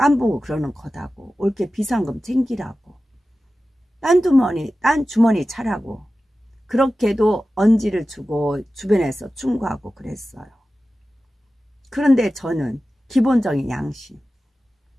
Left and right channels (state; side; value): normal; both; correlation 0.94